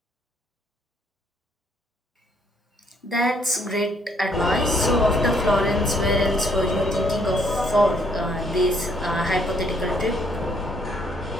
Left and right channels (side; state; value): both; normal; correlation 0.68